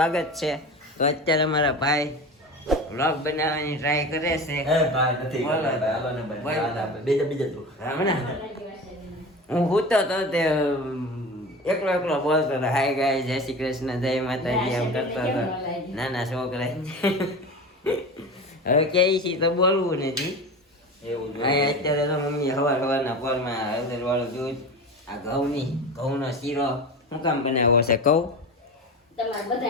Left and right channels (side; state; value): both; normal; correlation 0.30